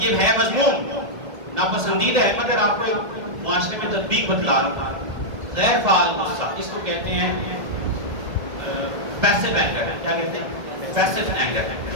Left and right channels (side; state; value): left; late; 1.7 ms